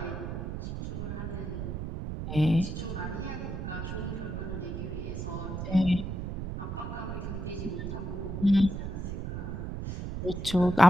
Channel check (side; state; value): right; noise; rumble, 4 dB below the sound